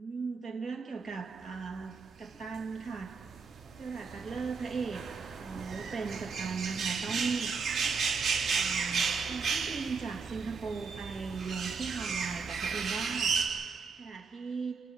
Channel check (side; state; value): left; quieter; 5.1 dB